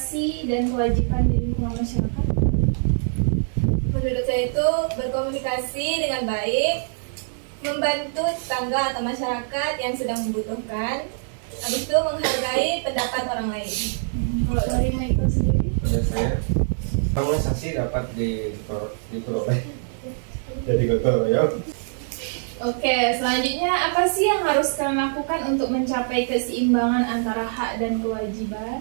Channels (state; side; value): silent; left; digital silence